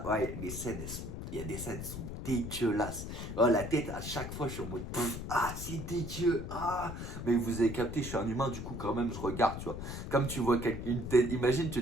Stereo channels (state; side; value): noise; left; rumble, 7 dB below the sound